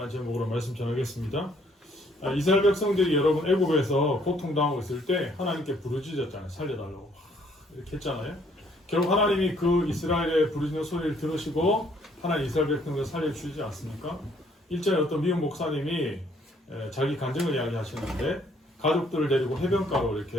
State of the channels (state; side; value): normal; both; correlation 0.64